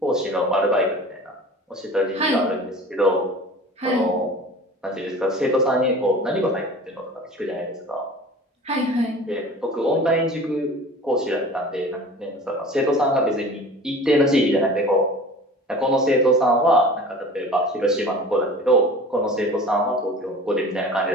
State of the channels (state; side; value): normal; both; correlation 0.40